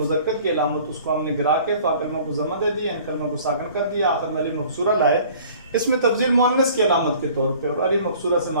की अलामत उसको हमने गिरा के फ़ा कलमों को ज़मा दे दिया, इन कलमों को साकिन कर दिया, आखिर में अली मक़सूरा लाए, इसमें तफ़ज़ील मुअन्नस की अलामत के तौर पे, और अली मक़सूरा से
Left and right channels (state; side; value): inverted; both; correlation -0.50